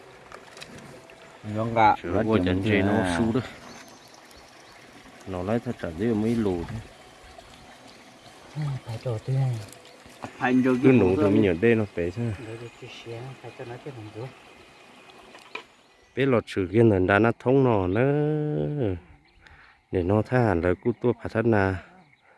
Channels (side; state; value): both; identical; correlation 1.00